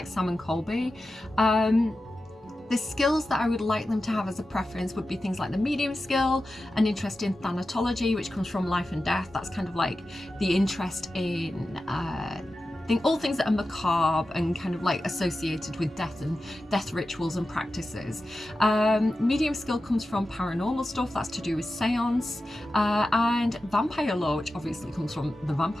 Sam and Colby. The skills that I would like them to have as a preference would be things like the medium skill, an interest in thanatology, which comes from life and death. That's kind of like the interest in all things that are macabre and kind of like associated with death and death rituals and practices. Medium skill comes from paranormal stuff, that's to do with seance, and vampire lore, which obviously comes from the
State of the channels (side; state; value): both; normal; correlation 0.93